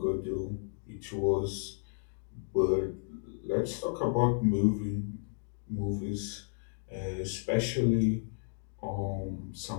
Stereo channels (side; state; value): right; silent; digital silence